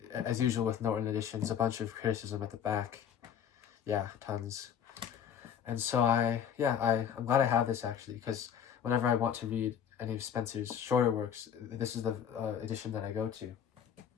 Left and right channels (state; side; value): quieter; right; 8.5 dB